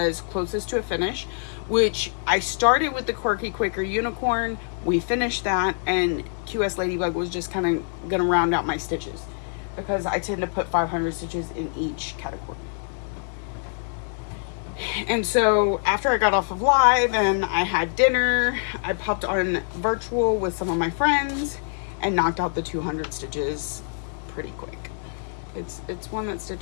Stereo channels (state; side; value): silent; right; 61 dB below the other